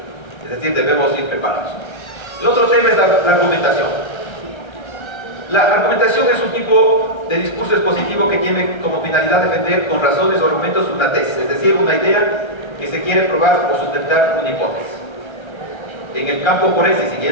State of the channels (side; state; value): right; late; 1.3 ms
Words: es decir, debemos ir preparados. El otro tema es la argumentación. La argumentación es un tipo de discurso expositivo que tiene como finalidad defender con razones o argumentos una tesis, es decir, una idea que se quiere probar o sustentar una hipótesis. En el campo forense,